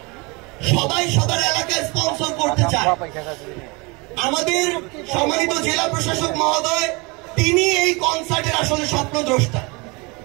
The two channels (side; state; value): left; quieter; 27.6 dB